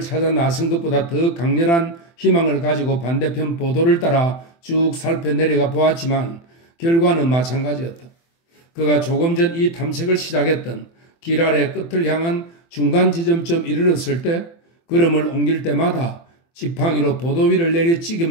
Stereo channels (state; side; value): late; right; 24 ms